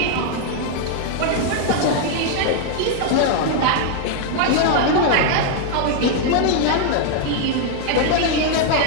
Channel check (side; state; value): both; different; correlation 0.00